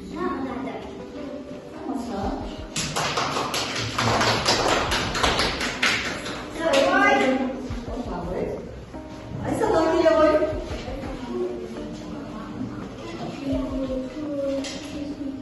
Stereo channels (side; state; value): both; identical; correlation 1.00